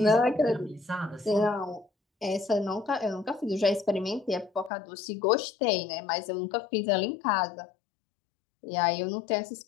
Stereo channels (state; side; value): drops out; right; at 4.7 s